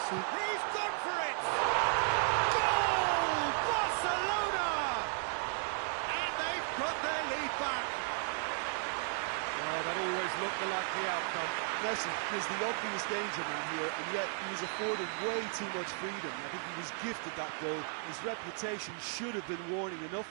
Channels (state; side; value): silent; left; 54 dB below the other